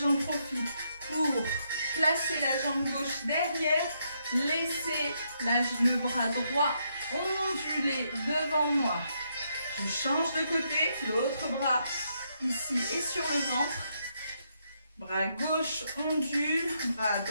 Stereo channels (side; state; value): both; inverted; correlation -0.77